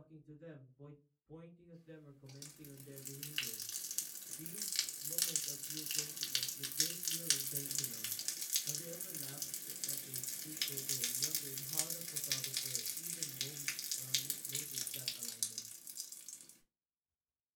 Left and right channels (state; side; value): identical; both; correlation 1.00